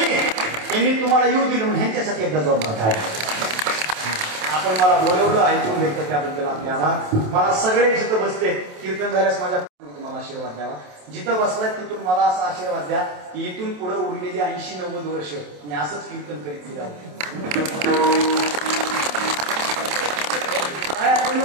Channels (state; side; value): late; left; 27 ms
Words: यांनी तुम्हाला येऊ दिलं म्हणून ह्यांच्यासाठी एकदा जोरदार टाळ्या. आपण मला बोलवलं, ऐकून घेतलं त्याबद्दल आपले आभार. मला सगळे जिथं बसते कीर्तन झाल्यास माझ्या मला आशीर्वाद द्यावा. जिथं बसलाय तिथून मला असा आशीर्वाद द्या की इथून पुढे उरलेली 80-90 वर्ष मी असंच कीर्तन करीत फिरावं.